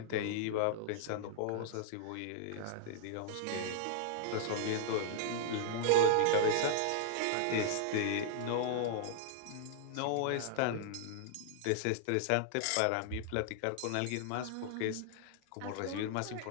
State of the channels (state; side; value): different; both; correlation -0.01